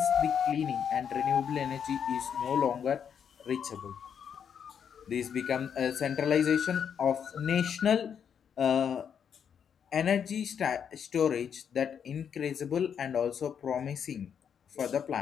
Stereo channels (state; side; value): quieter; right; 7.8 dB